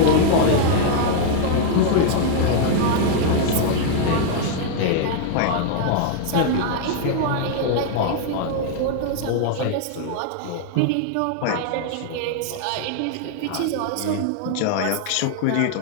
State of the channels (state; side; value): different; both; correlation 0.00